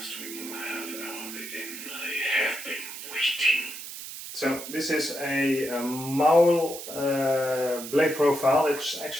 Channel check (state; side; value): noise; right; hiss, 10 dB below the sound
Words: we will have our living. I have been waiting. So this is a Maul blade profile. It's